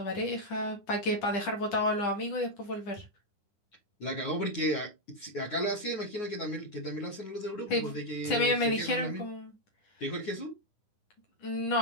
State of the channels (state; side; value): late; right; 10 ms